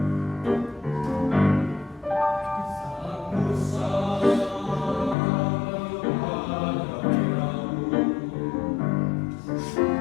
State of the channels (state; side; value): drops out; right; at 5.2 s